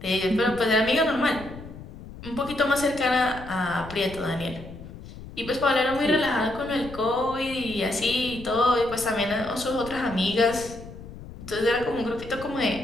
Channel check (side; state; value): left; noise; rumble, 14 dB below the sound